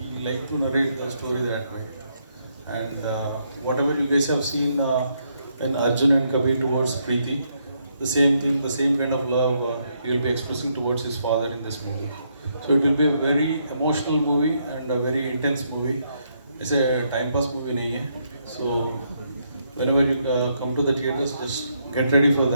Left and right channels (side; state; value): both; inverted; correlation -0.76